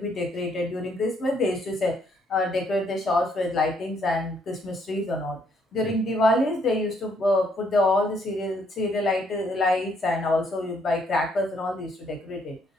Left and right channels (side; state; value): both; normal; correlation 0.70